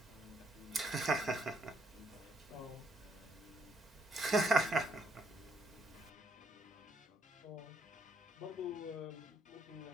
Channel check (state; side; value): normal; both; correlation 0.72